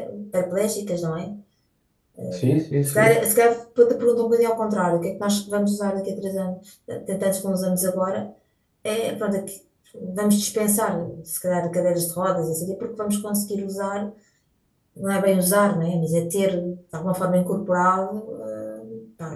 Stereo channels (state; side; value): identical; both; correlation 1.00